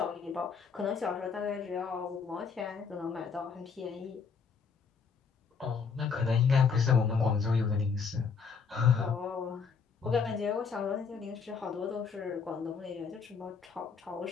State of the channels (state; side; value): quieter; right; 5.7 dB